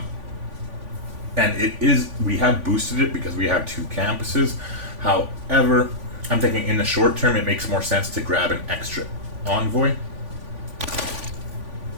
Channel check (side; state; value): left; late; 3.5 ms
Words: And we have boosted it because we have 2 campuses. However, I'm thinking in the short term it makes more sense to grab an extra envoy.